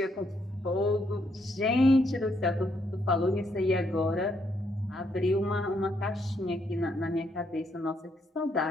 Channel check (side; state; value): both; normal; correlation 0.75